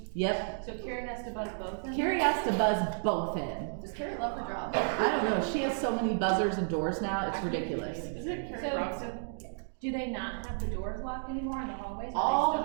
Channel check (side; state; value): left; silent; digital silence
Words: Yep. So Karen has to buzz both in? Carrie has to buzz both in. Does Carrie love her job? I don't know. She has so many buzzers and doors now. It's ridiculous. Is it Carrie So- Robson? Do they not have the doors locked anymore in the hallways? All the